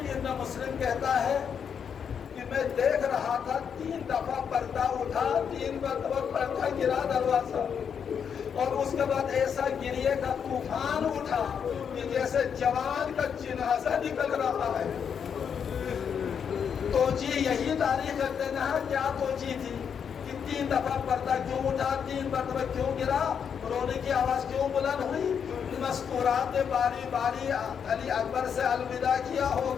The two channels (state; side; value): quieter; right; 7.3 dB